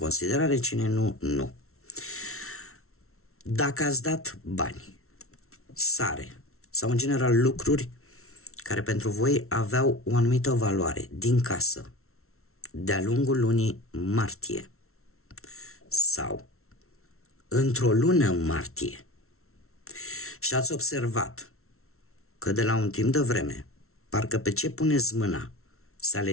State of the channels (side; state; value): right; late; 0.63 ms